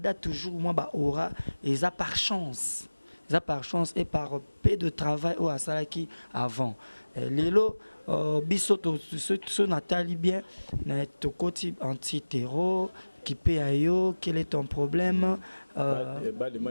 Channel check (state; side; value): inverted; both; correlation -1.00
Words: toujours moi aura et ça par chance et par peu de travail au Asalaki avant lelo bisoto ce Nathalie bien to côté anti-terror qui paye ayo quel est ton problème